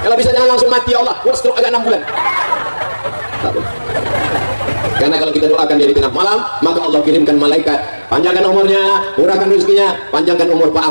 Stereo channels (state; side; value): inverted; both; correlation -1.00